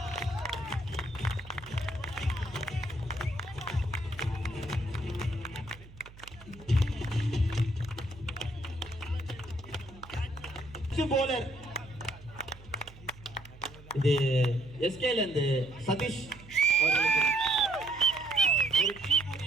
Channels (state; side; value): noise; right; hum, 20 dB below the sound